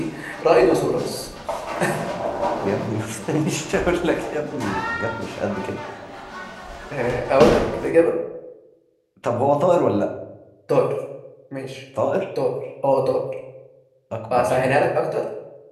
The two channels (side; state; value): both; identical; correlation 1.00